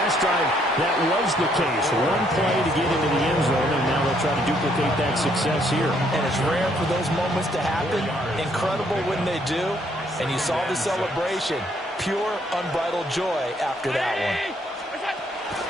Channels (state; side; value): normal; both; correlation 0.69